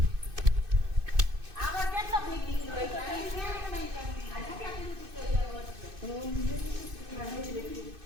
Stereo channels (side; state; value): left; late; 2.6 ms